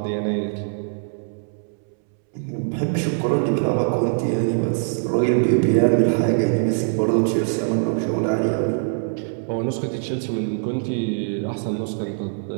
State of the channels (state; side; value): silent; left; 64 dB below the other